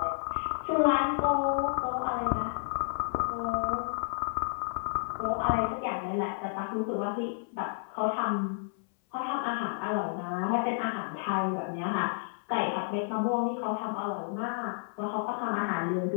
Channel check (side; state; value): right; silent; 57 dB below the other